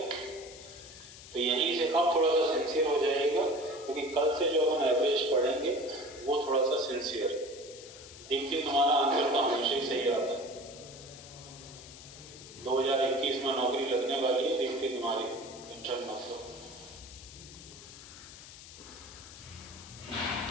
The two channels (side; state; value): left; noise; hiss, 16 dB below the sound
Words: तो यहीं से अब थोड़ा सा सिंसियर हो जाएगा, क्योंकि कल से जो अपन एवरेज पढ़ेंगे वो थोड़ा सा सिंसियर। देखिए तुम्हारा आंसर तो हमेशा ही सही आता है। 2021 में नौकरी लगने वाली है, देखते तुम्हारी, टेंशन मत लो।